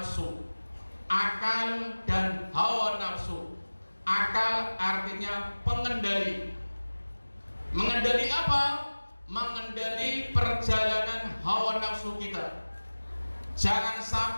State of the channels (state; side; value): inverted; both; correlation -1.00